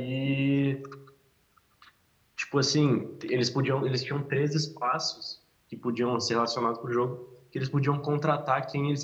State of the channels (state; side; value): identical; both; correlation 1.00